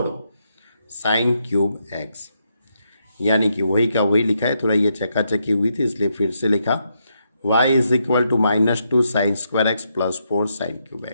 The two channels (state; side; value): inverted; both; correlation -0.80